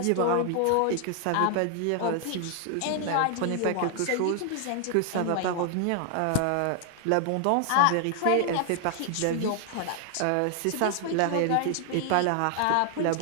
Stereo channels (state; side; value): different; both; correlation 0.00